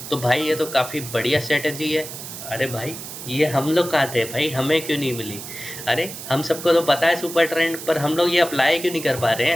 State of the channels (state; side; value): noise; right; hiss, 10 dB below the sound